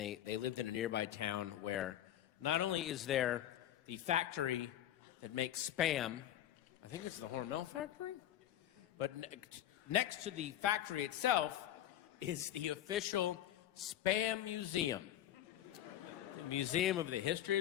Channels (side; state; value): right; quieter; 12.1 dB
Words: lived in a nearby town where not only is there the factory that makes Spam, I think it's the Hormel factory, but next to the factory itself is the official Spam Museum, the Museum of the History